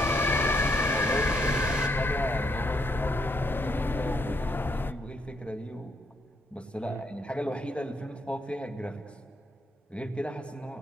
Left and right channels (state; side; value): normal; both; correlation 0.75